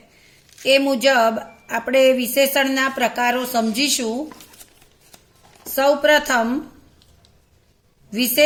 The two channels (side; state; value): both; identical; correlation 1.00